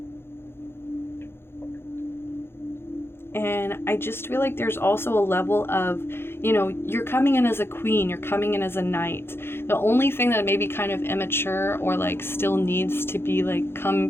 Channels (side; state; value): right; late; 0.11 ms